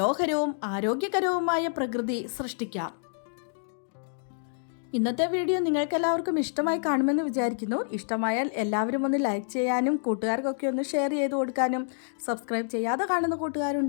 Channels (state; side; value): silent; right; digital silence